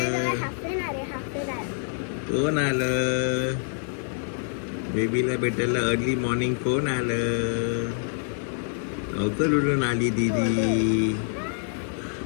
कोण आलं बेबीला भेटायला अर्ली मॉर्निंग? कोण आलं? लवकर उठून आली दीदी,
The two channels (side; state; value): right; silent; 61 dB below the other